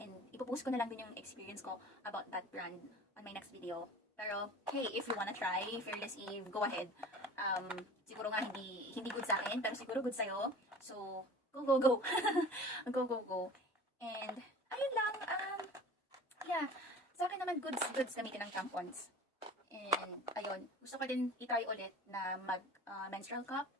ipopost ko na lang din yung experience ko about that brand on my next video. Pero, hey, if you wanna try Fearless Eve, go ahead. Siguro nga hindi good sa akin, pero siguro good sa'yo. So, go. Go. And, ayun lang. Yeah. Sa akin naman, goods gamitin ng tampons. And, ayun. Gusto ko din i-try ulit na menstrual cup.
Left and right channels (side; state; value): both; normal; correlation 0.41